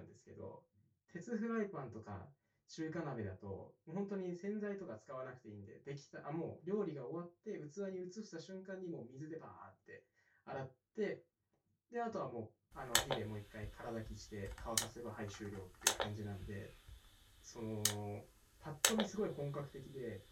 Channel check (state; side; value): identical; both; correlation 1.00